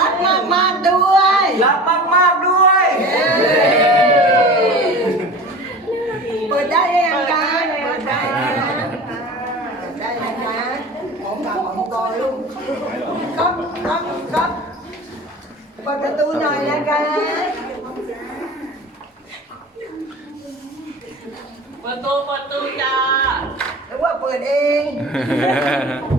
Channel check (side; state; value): both; normal; correlation 0.37